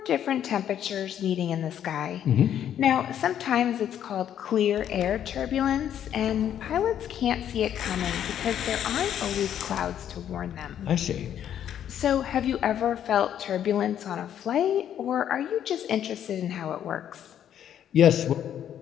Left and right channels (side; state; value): right; quieter; 10.0 dB